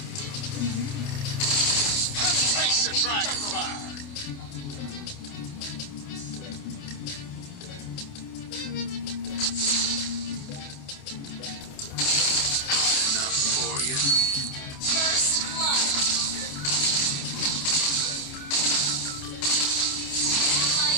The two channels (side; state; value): right; late; 28 ms